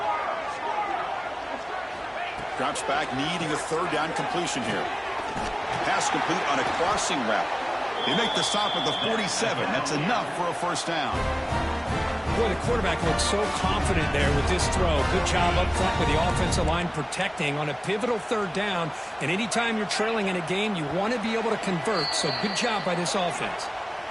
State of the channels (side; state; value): both; identical; correlation 1.00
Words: Drops back, needing a 3rd down completion here. Pass complete on a crossing route. They make the stop at the 47. That's enough for a 1st down. Boy, the quarterback looks so confident there with this throw. Good job up front with the offensive line protecting on a pivotal 3rd down. And anytime you're trailing in a game, you want to be able to convert. So good job by this offense.